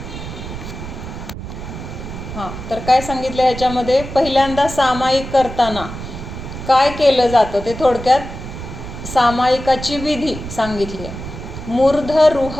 हां, तर काय सांगितलं ह्याच्यामध्ये, पहिल्यांदा सामायिक करताना काय केलं जातं ते थोडक्यात सामायिकाची विधी सांगितली आहे.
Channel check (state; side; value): noise; right; rumble, 9 dB below the sound